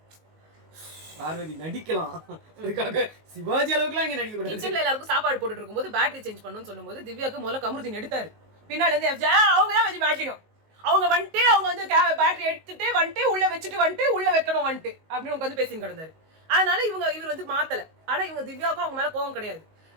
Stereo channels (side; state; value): left; late; 19 ms